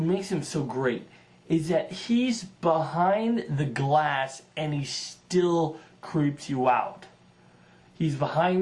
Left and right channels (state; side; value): identical; both; correlation 1.00